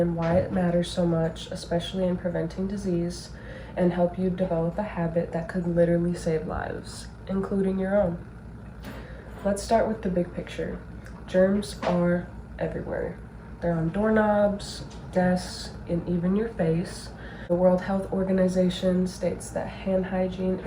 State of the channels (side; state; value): both; identical; correlation 1.00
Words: why it matters so much, especially in preventing disease, and help you develop a habit that could literally save lives, including your own. Let's start with the big picture. Germs are everywhere. They're on doorknobs, desks, and even your face. The World Health Organization states that hand hygiene